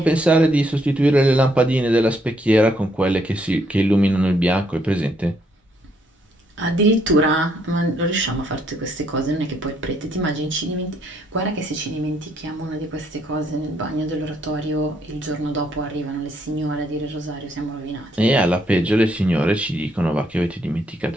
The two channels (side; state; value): both; normal; correlation 0.71